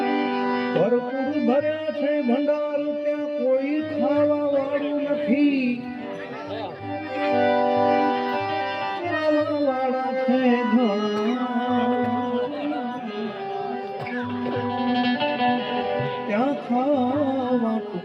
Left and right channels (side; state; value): both; identical; correlation 1.00